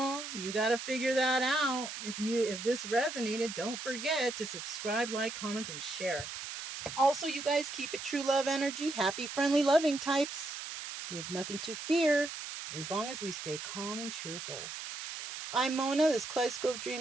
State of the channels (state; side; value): noise; right; hiss, 8 dB below the sound